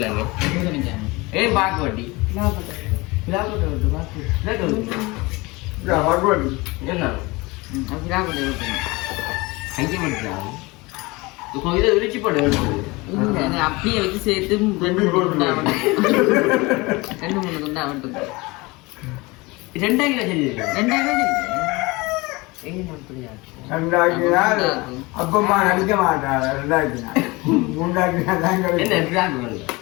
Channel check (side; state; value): right; quieter; 23.7 dB